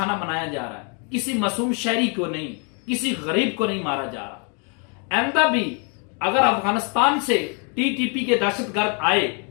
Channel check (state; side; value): quieter; right; 37.7 dB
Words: بنایا جا رہا ہے، کسی معصوم شہری کو نہیں، کسی غریب کو نہیں مارا جا رہا۔ آئندہ بھی اگر افغانستان سے ٹی ٹی پی کے دہشت گرد آئے